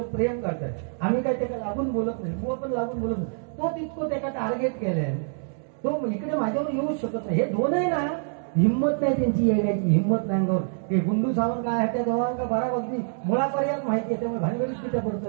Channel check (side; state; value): left; silent; digital silence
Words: प्रेम करताय. आम्ही काय त्याला लागून बोलत नाही. मुळ पण लागून बोलत नाही. तो तितकं त्याला टार्गेट केलंय. तो इकडे माझ्यावर येऊच शकत नाही. हे दोनही ना हिंमत नाही त्यांची यायची. हिंमत नाही अंगावर. ते गुंडू सावंत काय त्या दोघांना बराबरती मुळापर्यंत माहिती आहे. त्यामुळे भानगडीत तिथे